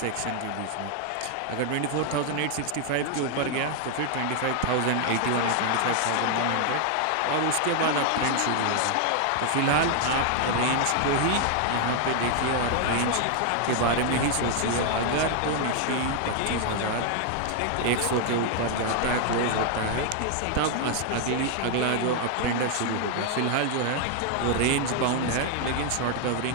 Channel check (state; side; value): different; both; correlation 0.00